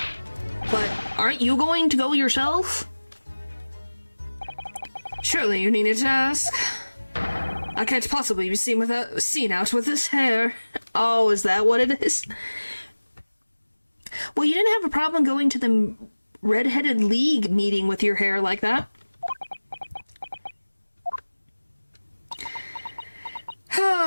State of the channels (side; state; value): both; inverted; correlation -1.00